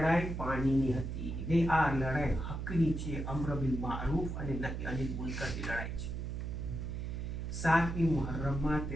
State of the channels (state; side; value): noise; right; hum, 4 dB below the sound